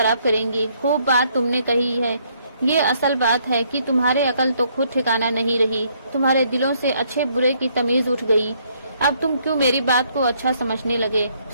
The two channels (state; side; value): inverted; both; correlation -0.69